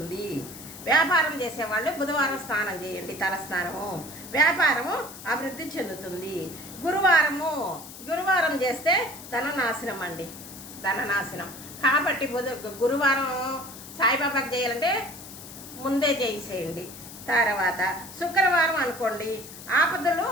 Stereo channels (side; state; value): left; noise; hiss, 14 dB below the sound